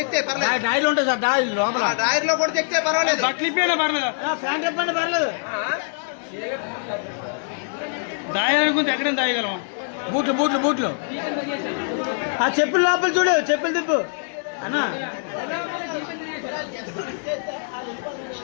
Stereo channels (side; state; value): right; silent; 63 dB below the other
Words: చేయి పర్లేదు. టైర్లు ఉంటాయి సార్, టైర్ లో కూడా చెక్ చేయి పర్వాలేదు. బట్లిపోయినా పర్లేదు, ఫ్యాన్ చెప్పండి పర్లేదు. దాయాలనుకుంటే ఎక్కడైనా దాయగలం. బూట్లు బూట్లు బూట్లు ఆ చెప్పులు లోపల చూడు, చెప్పులు తిప్పు అన్నా.